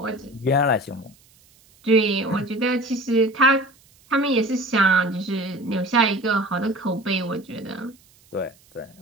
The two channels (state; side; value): noise; right; hiss, 30 dB below the sound